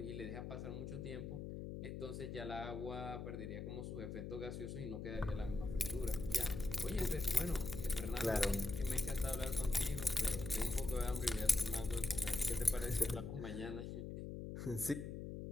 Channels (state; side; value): noise; left; hum, 6 dB below the sound